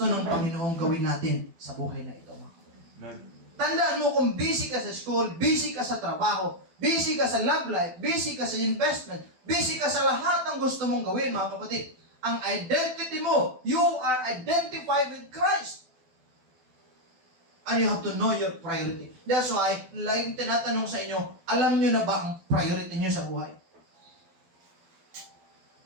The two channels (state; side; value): late; left; 12 ms